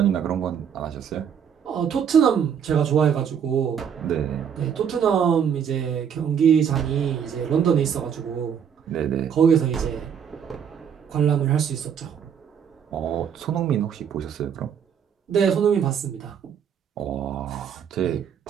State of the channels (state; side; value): quieter; left; 8.0 dB